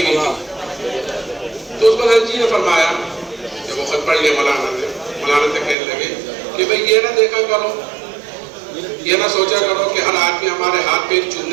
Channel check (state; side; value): drops out; left; at 5.8 s